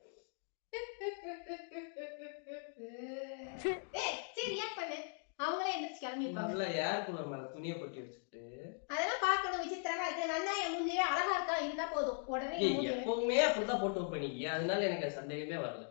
ஏய் சரி ரியாக்ட் பண்ணு. அவங்களே எந்திரச்சு கிளம்பி இருப்பாங்க. நல்ல ஏர் கூலர் மேல துணியை கொட்டி வச்சுட்டு அதெல்லாம் பார்க்கணும். விசித்திரமா இருக்கு. நல்லா என் மூஞ்சியே அழகா இருக்கா இருந்தா போதும். உடனே என் மூஞ்சி எப்பவுமே அப்படிதான் போட்டு வைப்பீங்க. அதனால எனக்கு சந்தேகமே வரல.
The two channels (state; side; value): silent; right; 51 dB below the other